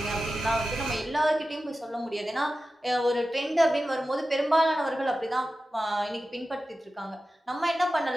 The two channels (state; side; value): normal; both; correlation 0.94